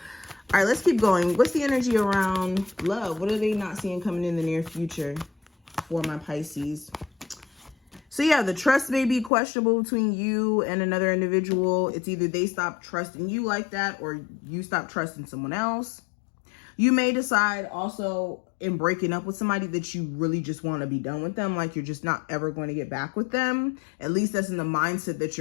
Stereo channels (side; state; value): right; drops out; at 9.3 s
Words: All right, let's keep going. What's the energy around love? What are they not seeing coming in the near future for my Pisces? So yeah, the trust may be questionable between you and another individual. It's either they stop trusting you like that, or you stop trusting someone else. You may decide also in breaking up with somebody that you really just want to be done with them. Like you're just not ever going to get back with them. At least that's in the mindset that